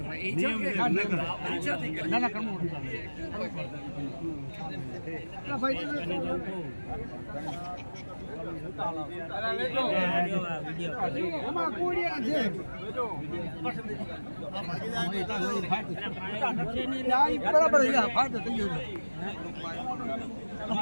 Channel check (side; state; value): both; inverted; correlation -1.00